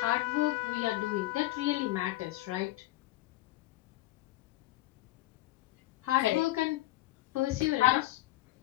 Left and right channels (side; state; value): right; quieter; 17.8 dB